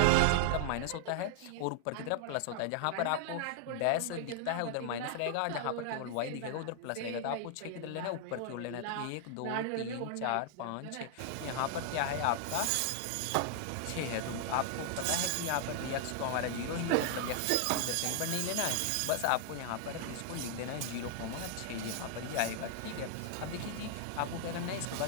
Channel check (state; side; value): different; both; correlation 0.00